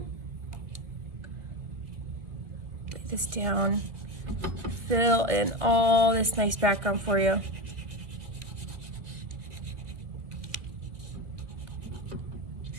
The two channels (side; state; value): left; late; 1.9 ms